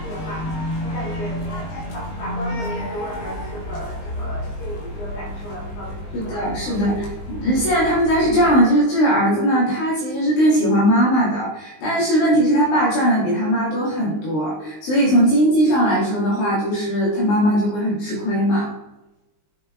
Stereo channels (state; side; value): late; right; 19 ms